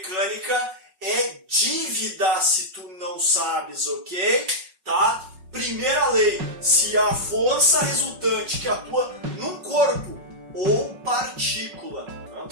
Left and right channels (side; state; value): left; late; 5.4 ms